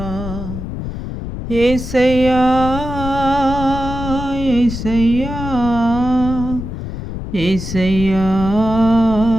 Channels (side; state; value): left; noise; rumble, 7 dB below the sound